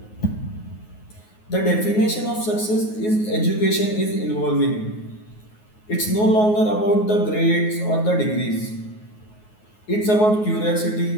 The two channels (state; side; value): late; right; 9.4 ms